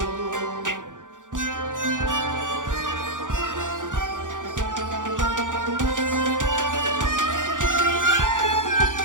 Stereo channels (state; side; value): late; left; 0.87 ms